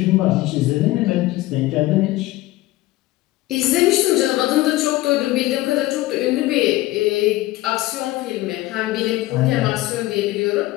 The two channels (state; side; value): quieter; right; 17.7 dB